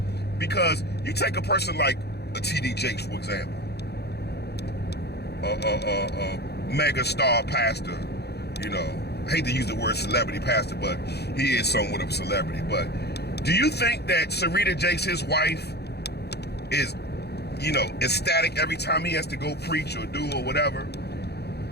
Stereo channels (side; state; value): right; late; 0.48 ms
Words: because you take a person like a T.D. Jakes, for example, a mega star pastor, you know, I hate to use the word celebrity pastor, but he is somewhat of a celebrity. But do you think that Sarita Jakes, his wife, is, you know, ecstatic every time he has to go preach or do or whatever?